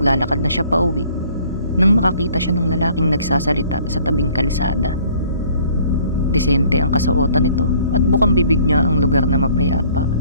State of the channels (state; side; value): inverted; both; correlation -0.57